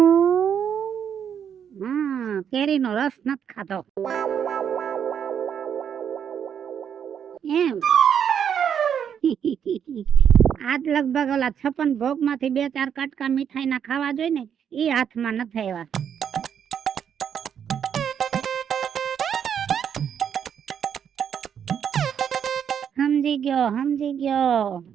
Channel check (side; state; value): left; quieter; 8.3 dB